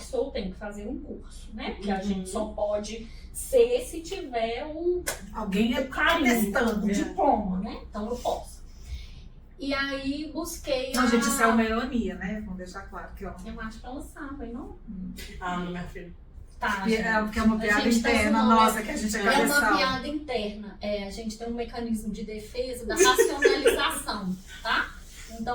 sou, tenho que fazer um curso, né? Porque a gente só pode ser se tiver alguém o carinho, testando, o diploma, né? Então eu posso. E aí busquei Não, gente, isso é uma ironia, né? Vamos deixar claro que eu acho que ela sabe, não? Não, minha filha. Tá, porque é uma piada interna nossa, que a gente é cabeçal. É uma piada interna. A gente tem um mecanismo de defesa da racionalização, tá?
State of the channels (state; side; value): identical; both; correlation 1.00